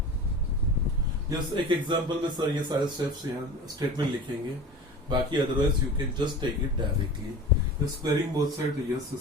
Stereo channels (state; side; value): normal; both; correlation 0.36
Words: यस, एक एग्जांपल में सर ये सारे स्टेप्स यहाँ स्टेटमेंट लिखेंगे, बाकी otherwise you can just take it directly. Squaring both side, yes